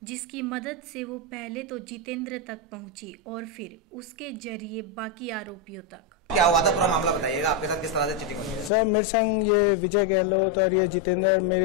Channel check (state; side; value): drops out; right; at 8.7 s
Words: जिसकी मदद से वो पहले तो जितेंद्र तक पहुंची और फिर उसके जरिए बाकी आरोपियों तक। क्या हुआ था, पूरा मामला बताइएगा, आपके साथ किस तरह से चीटिंग हुई? सर, मेरे संग ये विजय गहलोत और ये जितेंद्र